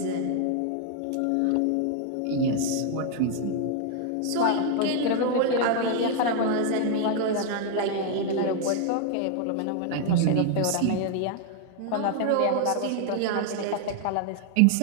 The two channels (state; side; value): different; both; correlation 0.00